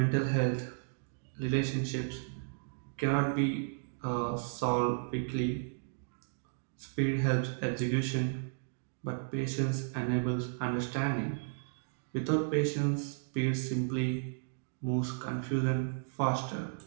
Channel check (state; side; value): silent; left; digital silence